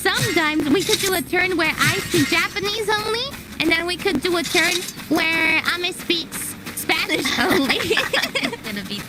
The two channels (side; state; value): both; identical; correlation 1.00